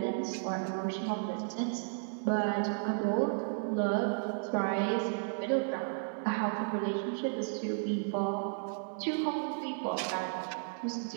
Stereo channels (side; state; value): left; silent; digital silence